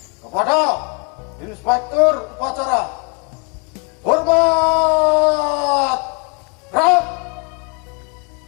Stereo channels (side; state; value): right; quieter; 34.0 dB